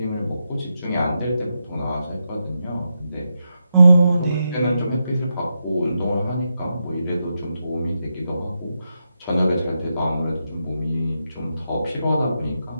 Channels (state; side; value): inverted; both; correlation -0.86